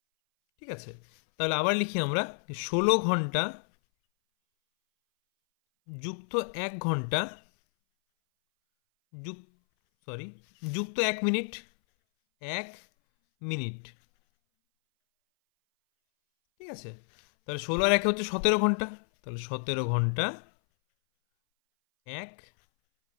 ঠিক আছে, তাহলে আবার লিখি আমরা, 16 ঘন্টা যুক্ত 1 ঘন্টা যুক্ত 1 মিনিট। 1 মিনিট। ঠিক আছে, তাহলে 16 আর 1 হচ্ছে 17 ঘন্টা। তাহলে 17 ঘন্টা 1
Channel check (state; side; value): silent; right; 58 dB below the other